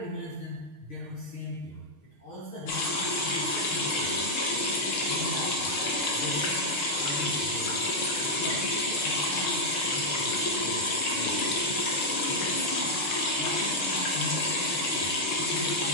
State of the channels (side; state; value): right; late; 6.5 ms